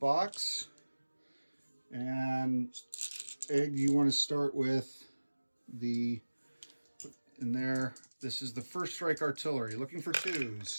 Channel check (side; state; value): both; inverted; correlation -1.00